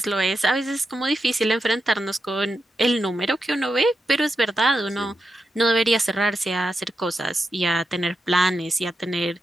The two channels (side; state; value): both; normal; correlation 0.87